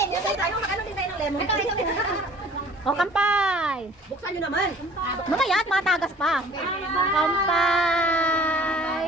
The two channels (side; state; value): both; normal; correlation 0.50